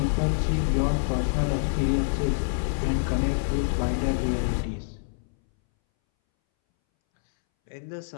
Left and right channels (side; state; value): right; silent; 61 dB below the other